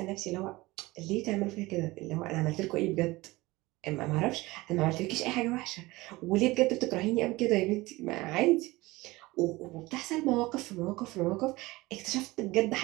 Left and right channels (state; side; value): quieter; left; 20.7 dB